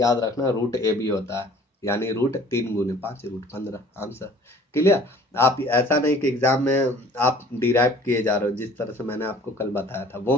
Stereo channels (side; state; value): both; normal; correlation 0.51